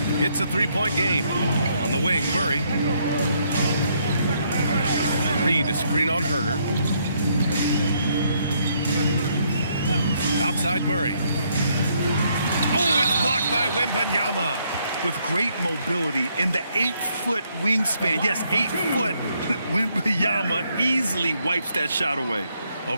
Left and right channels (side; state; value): both; inverted; correlation -0.72